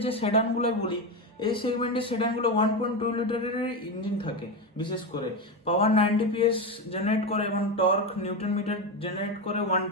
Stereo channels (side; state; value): both; normal; correlation 0.15